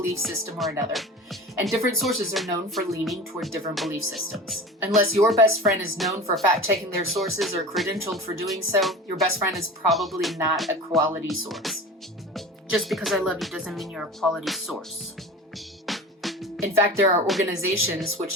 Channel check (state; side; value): normal; both; correlation 0.34